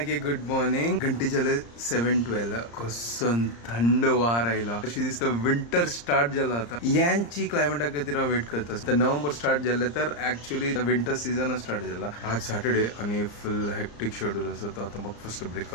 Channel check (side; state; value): right; late; 34 ms